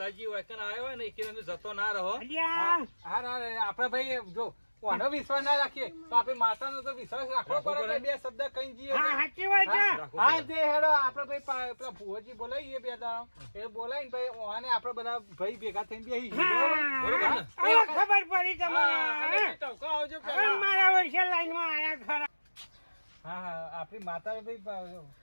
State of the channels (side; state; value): both; inverted; correlation -1.00